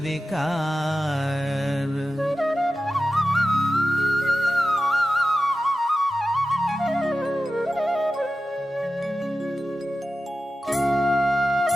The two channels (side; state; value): both; normal; correlation 0.93